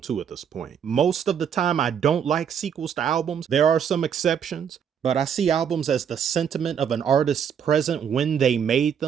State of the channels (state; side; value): quieter; left; 7.9 dB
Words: at this point. Most of the time, I don't like sequels to albums. There are some exceptions, but I see albums as the sentiment of an artist's present when they made